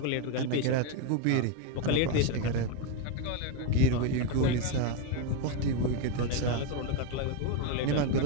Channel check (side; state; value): both; different; correlation 0.02